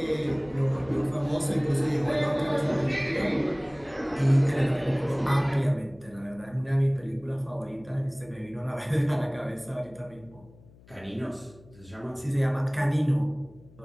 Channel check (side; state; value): left; noise; hum, 24 dB below the sound